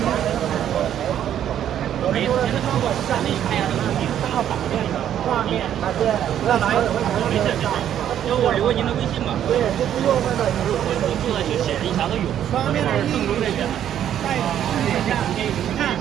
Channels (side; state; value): left; quieter; 10.4 dB